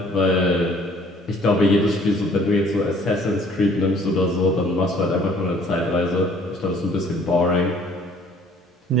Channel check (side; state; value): both; normal; correlation 0.56